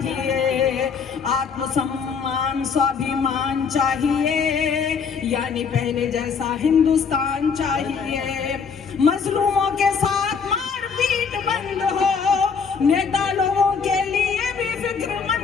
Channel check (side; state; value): right; quieter; 5.9 dB